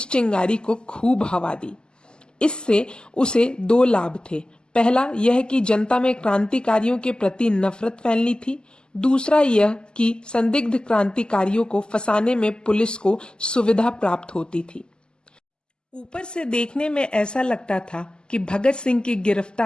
चिंगारी को खूब हवा दी। इससे उसे दो लाभ थे। पहला यह कि जनता में क्रांतिकारियों के प्रति नफरत फैलनी थी। दूसरा यह कि संदिग्ध क्रांतिकारियों को फंसाने में पुलिस को सुविधा प्राप्त होती थी। ऊपर से देखने में ऐसा लगता था कि भगत सिंह की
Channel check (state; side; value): late; right; 0.047 ms